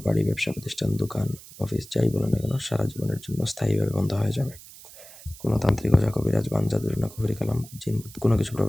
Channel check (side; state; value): right; noise; hiss, 18 dB below the sound